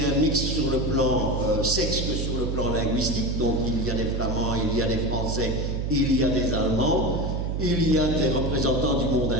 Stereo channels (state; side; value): noise; right; hum, 1 dB below the sound